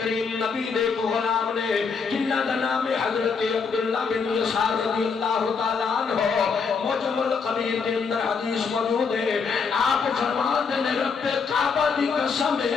کریم نبی دے کو غلام نے جنہاں دا نام ہے حضرت عبداللہ بن یسار رضی اللہ تعالی عنہ. معجم القبیر دے اندر حدیث موجود ہے. آپ فرماتے نے رب کعبہ دی قسم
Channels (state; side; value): quieter; right; 5.5 dB